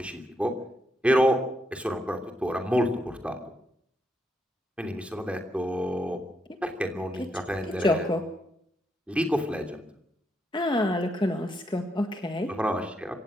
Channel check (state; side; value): normal; both; correlation 0.79